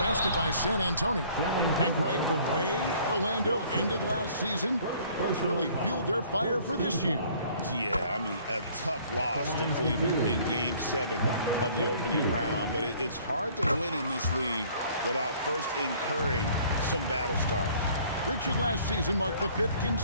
by San Antonio. And Greg, the way Orlando ended last season has really fueled their fire for this year. Yeah, I mean, a tough loss to Cleveland in Game 7 of the opening round. But it's hard to win in this league without first incurring some battle scars. Richard, last season marked the 5th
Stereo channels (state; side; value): inverted; both; correlation -0.56